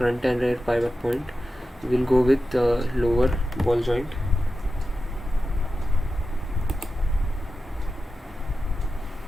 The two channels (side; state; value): both; normal; correlation 0.92